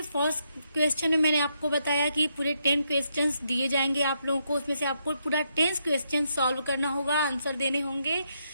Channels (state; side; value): inverted; both; correlation -0.78